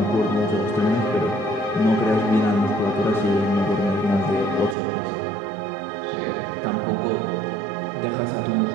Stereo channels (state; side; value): drops out; left; at 4.8 s